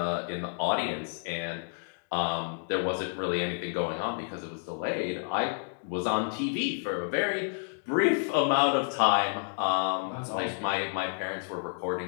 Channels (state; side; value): silent; right; digital silence